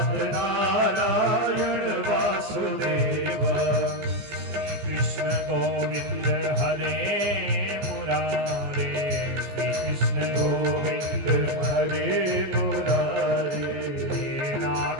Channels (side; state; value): left; late; 15 ms